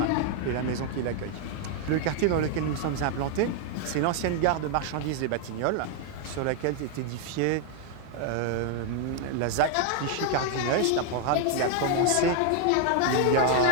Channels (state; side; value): different; both; correlation 0.00